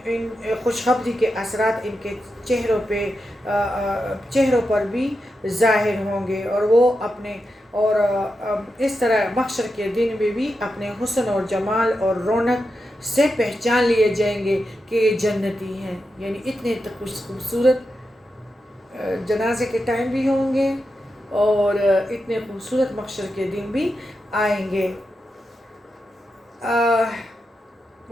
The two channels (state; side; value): normal; both; correlation 0.88